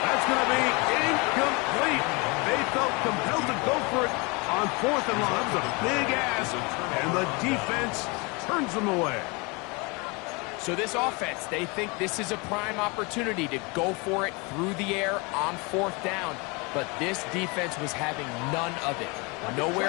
That's going to be incomplete. They felt compelled to go for it on 4th and long. That was a big ask, and the defense turns them away. So this offense, they think this is a prime opportunity to go for it through the air on 4th down. But this defense was having none of it.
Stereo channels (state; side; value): quieter; right; 28.5 dB